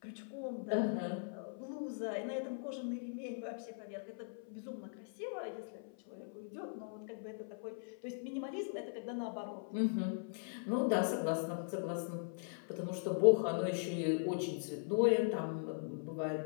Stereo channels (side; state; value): right; silent; 51 dB below the other